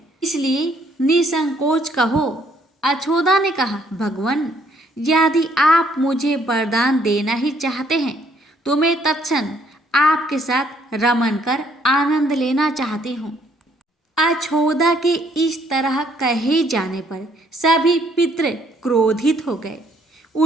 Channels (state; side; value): normal; both; correlation 0.66